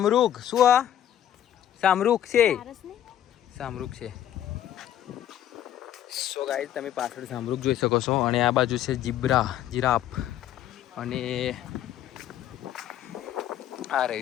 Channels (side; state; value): right; quieter; 11.2 dB